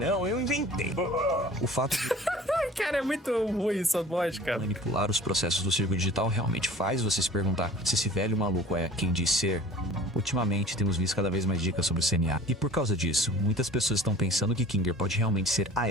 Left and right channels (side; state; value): both; normal; correlation 0.45